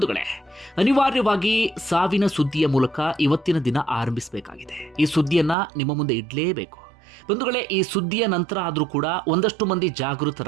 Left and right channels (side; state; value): left; drops out; at 5.6 s